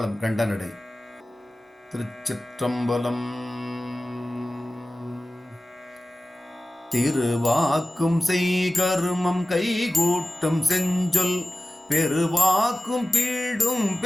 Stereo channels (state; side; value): normal; both; correlation 0.96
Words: கண்டனடை. திருச்சிற்றம்பலம். திருவாக்கும் செய்கருமம் கைகூட்டும் செஞ்சொல் பெருவாக்கும் பீடும்